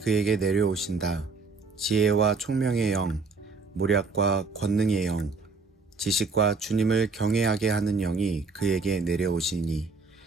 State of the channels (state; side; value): quieter; left; 4.2 dB